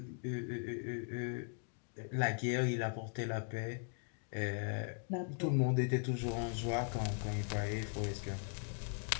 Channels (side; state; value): right; silent; 52 dB below the other